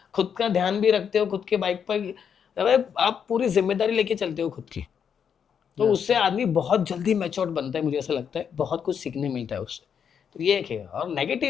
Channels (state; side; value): quieter; right; 7.5 dB